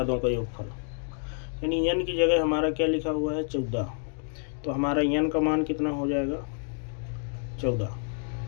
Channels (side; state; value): right; silent; 59 dB below the other